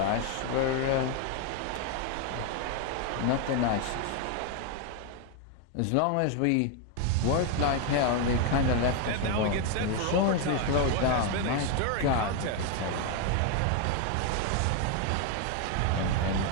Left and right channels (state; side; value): different; both; correlation 0.01